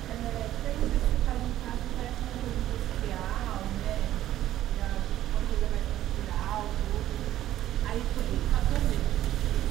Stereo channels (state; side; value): quieter; left; 13.1 dB